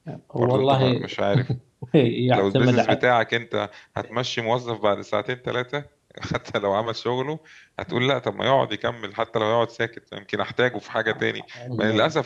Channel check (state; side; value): identical; both; correlation 1.00